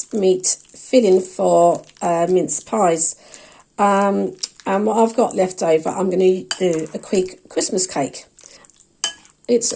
filling for mince pies. And what I've got left over, I'm going to do a quick Christmas cake. It's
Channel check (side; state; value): both; identical; correlation 1.00